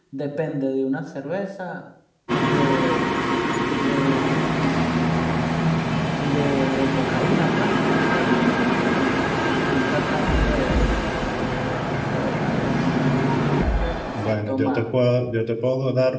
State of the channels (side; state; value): both; identical; correlation 1.00